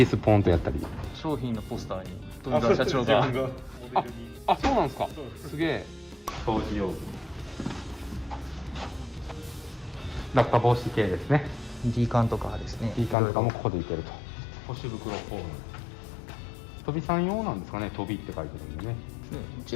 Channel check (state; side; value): drops out; right; at 13.2 s